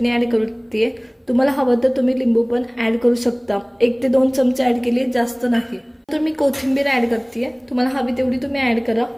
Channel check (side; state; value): both; identical; correlation 1.00